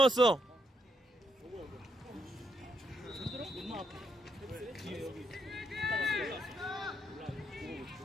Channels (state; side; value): normal; both; correlation 0.78